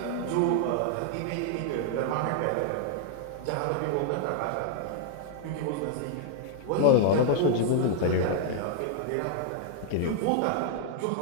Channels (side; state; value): both; different; correlation 0.00